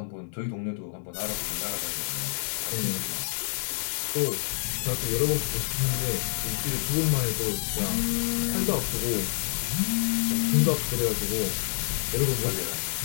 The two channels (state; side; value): silent; right; 59 dB below the other